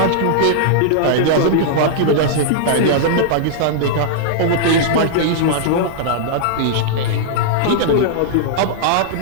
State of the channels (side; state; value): both; different; correlation -0.02